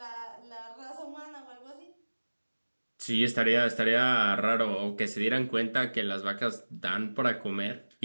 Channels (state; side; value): inverted; both; correlation -1.00